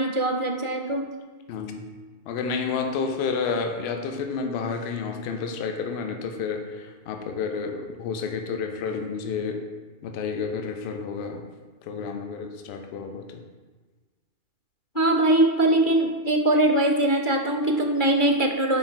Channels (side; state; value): right; late; 2.3 ms